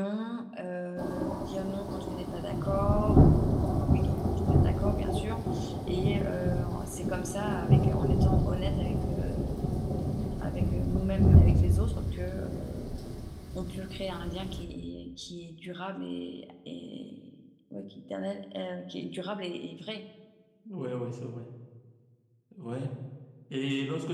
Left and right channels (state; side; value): identical; both; correlation 1.00